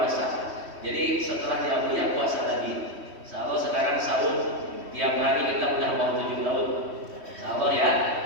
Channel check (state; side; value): late; left; 3.1 ms